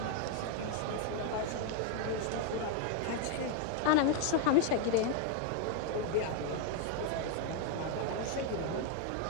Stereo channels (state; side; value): different; both; correlation 0.01